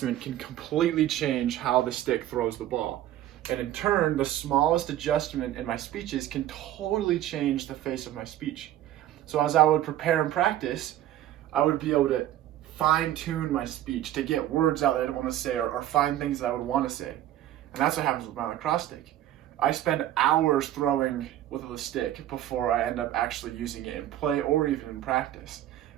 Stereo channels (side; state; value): left; quieter; 12.9 dB